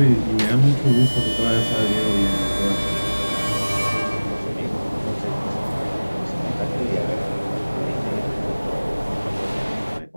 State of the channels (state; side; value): inverted; both; correlation -1.00